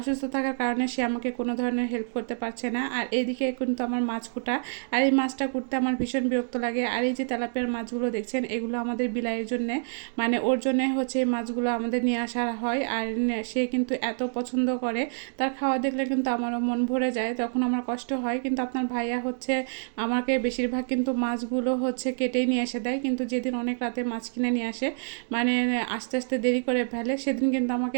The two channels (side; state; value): left; silent; 60 dB below the other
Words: থাকার কারণে সে আমাকে কোনো ধরনের হেল্প করতে পারছে না। আর এদিকে কিন্তু আমার মাছ কুটা, আর এই মাছটা কুটতে আমার ভীষণ বিরক্ত লাগে। আর এই যে তেলাপিয়ার মাছগুলো দেখছেন, এগুলো আমাদের বিলাইয়ের জন্যে, মানে ওর জন্যে হচ্ছে এই মাছগুলো আমাদের নিয়ে আসা হয়। আর সে কিন্তু এত পছন্দ করে, তার খাওয়া দেখলে কিন্তু আমারও মন ভরে যায়, তখন আমার কষ্ট হয়। কিন্তু আপনার ভাইয়া হচ্ছে আমাকে বেশিরভাগ কিন্তু মাছগুলো হচ্ছে কেটেই নিয়ে এসে দেয়, কিন্তু যেদিন অনেক রাতে মাছ কিনে নিয়ে আসে, মানে আস্তে আস্তে দেরি করে ফেলে, সেদিন কিন্তু আমাকে